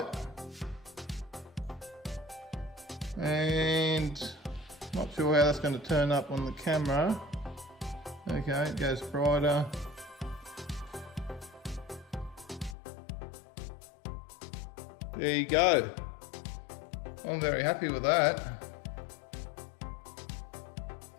And Not sure how that's going to turn up on the camera. Okay, it goes brighter. There you go. I'm very happy with that.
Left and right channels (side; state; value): right; drops out; at 12.8 s